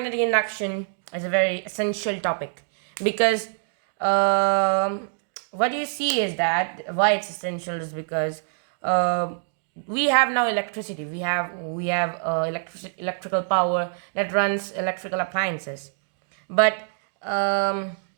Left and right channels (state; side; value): silent; left; digital silence